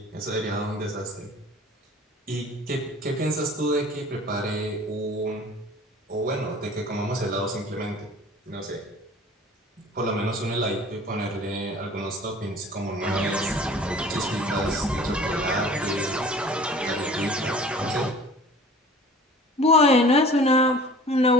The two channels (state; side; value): normal; both; correlation 0.46